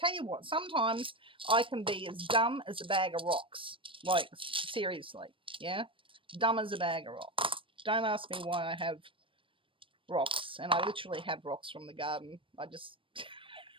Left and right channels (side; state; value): left; late; 0.25 ms